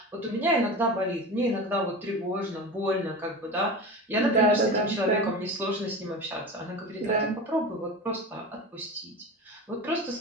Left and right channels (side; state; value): both; normal; correlation 0.29